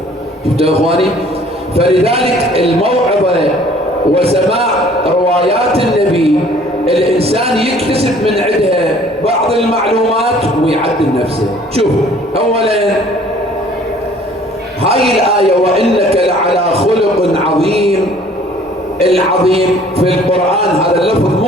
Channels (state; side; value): normal; both; correlation 0.54